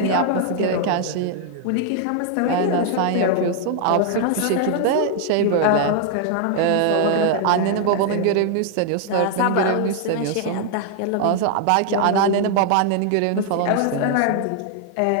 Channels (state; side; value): different; both; correlation 0.00